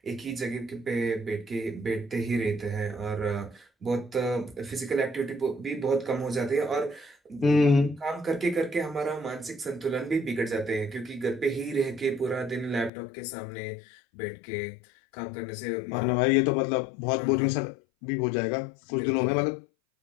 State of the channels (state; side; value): drops out; right; at 12.9 s